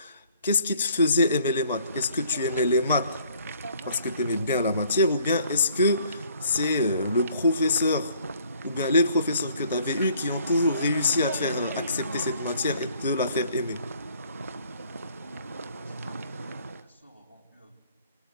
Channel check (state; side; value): inverted; both; correlation -0.60